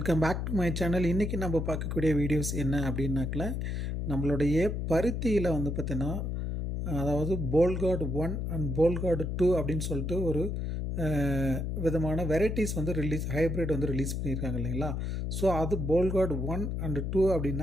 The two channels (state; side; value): noise; left; hum, 2 dB below the sound